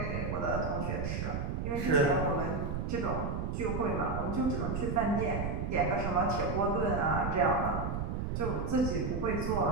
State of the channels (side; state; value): right; noise; rumble, 2 dB below the sound